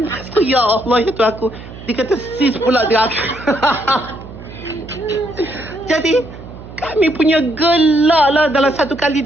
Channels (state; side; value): noise; right; hum, 15 dB below the sound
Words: tu, ya Allah, ya tu aku. Dia kata sis pula dekat aku. Jadi, kami punya gelak lah dalam satu hari